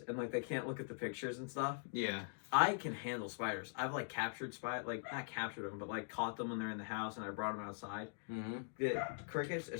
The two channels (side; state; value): right; silent; digital silence